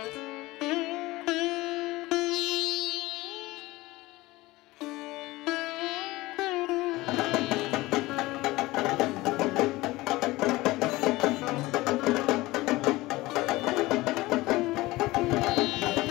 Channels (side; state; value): right; quieter; 19.7 dB